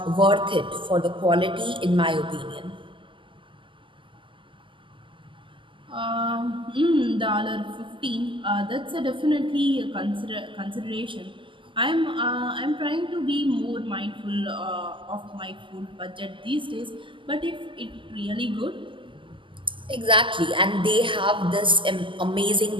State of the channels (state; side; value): late; left; 0.25 ms